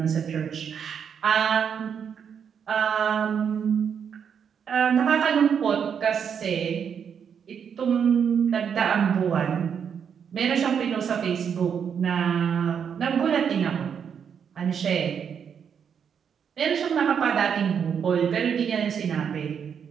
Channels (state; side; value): quieter; left; 7.5 dB